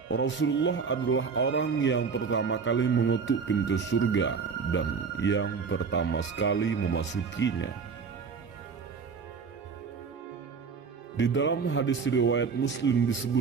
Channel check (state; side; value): quieter; left; 5.5 dB